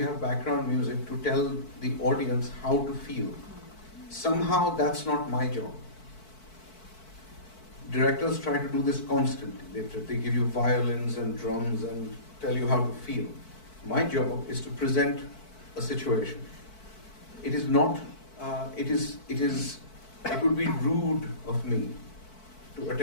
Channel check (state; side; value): late; right; 4.6 ms